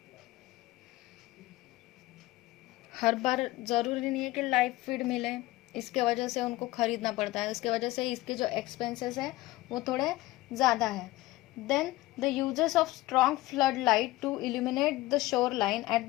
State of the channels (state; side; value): quieter; right; 18.3 dB